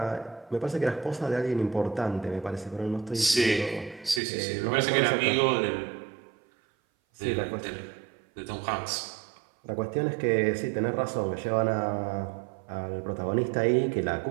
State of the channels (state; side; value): drops out; left; at 4.2 s